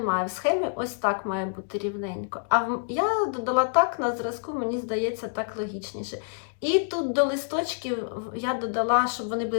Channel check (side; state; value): right; silent; digital silence